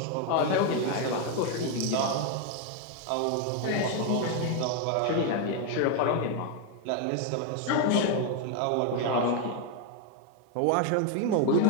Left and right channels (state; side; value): different; both; correlation 0.01